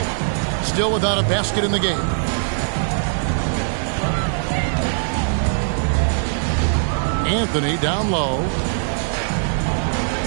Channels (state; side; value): silent; left; digital silence